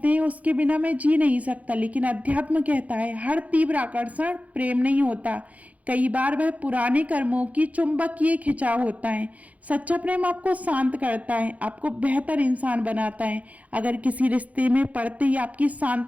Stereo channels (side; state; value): left; late; 0.070 ms